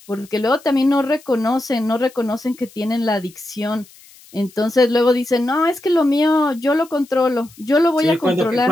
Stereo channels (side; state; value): left; noise; hiss, 25 dB below the sound